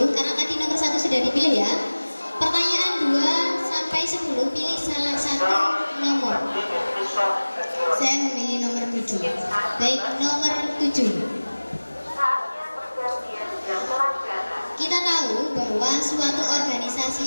karena tadi nomor 1 sudah dipilih ya. Pertanyaan 2 sampai 10, pilih salah satu nomor. Saya memilih nomor 7. Baik, nomor 7. Kita tahu bahwa suatu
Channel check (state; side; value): inverted; both; correlation -1.00